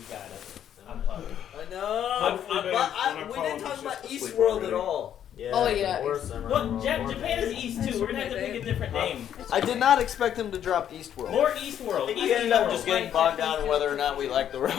got it. I'm pumped. I know. We didn't talk about Eastworld at all. Yeah, Oh, yeah. Well, Japan is East too. We're gonna have to pick a different name. I did not expect him to drop Eastworld. More Eastworld. We ended up just getting bogged down in whether or not we like the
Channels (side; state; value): right; quieter; 9.9 dB